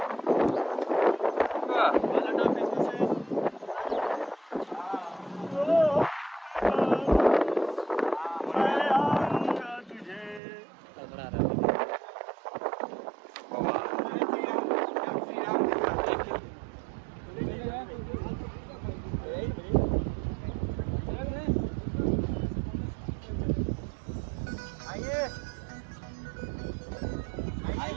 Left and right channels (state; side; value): drops out; left; at 10.4 s